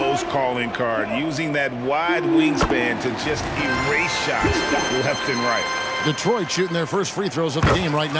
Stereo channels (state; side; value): identical; both; correlation 1.00